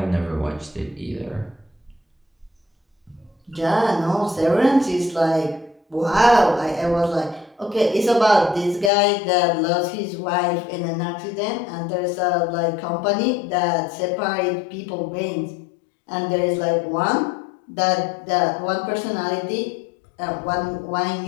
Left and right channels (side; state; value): right; drops out; at 8.9 s